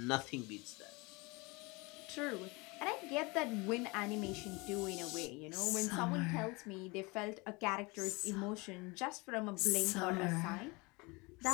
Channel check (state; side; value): quieter; right; 26.2 dB